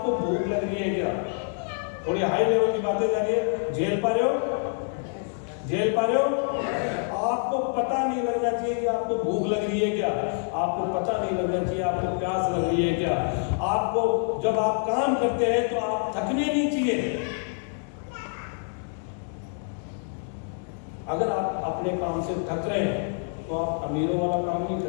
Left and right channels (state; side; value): silent; right; 56 dB below the other